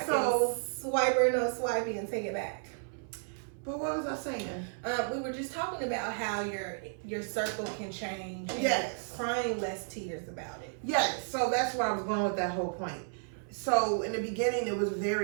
So, can swipe or no swipey and take it back. but what was I saying? We were just talking about how your circle can change. And Yes. crying less tears about it. Yes. So that's where I was going with that whole point. So in the beginning, it was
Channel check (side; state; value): left; silent; 56 dB below the other